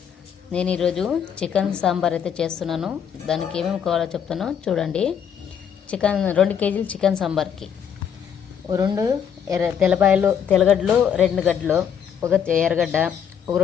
నేను ఈరోజు chicken sambar అయితే చేస్తున్నాను. దానికి ఏమేమి కావాలో చెప్తానో చూడండి. చికెన్ 2 కేజీలు చికెన్ సాంబార్కి 2 తెల్లగడ్డలు 2 గడ్డలు, 1 ఎర్రగడ్డ,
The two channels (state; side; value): quieter; right; 8.0 dB